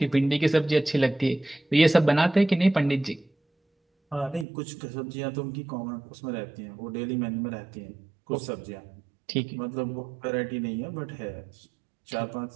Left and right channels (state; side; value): drops out; left; at 4.5 s